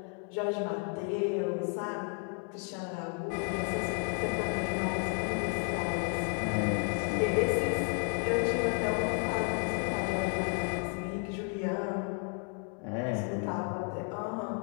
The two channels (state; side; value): quieter; right; 35.5 dB